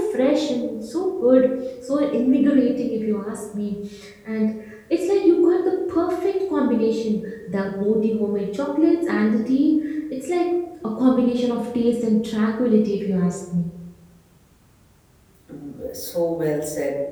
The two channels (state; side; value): identical; both; correlation 1.00